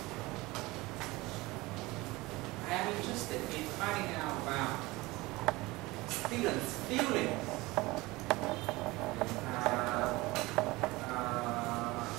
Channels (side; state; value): left; quieter; 21.4 dB